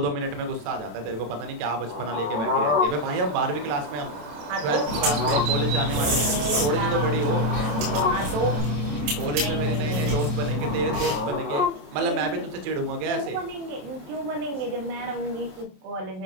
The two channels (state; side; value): late; left; 27 ms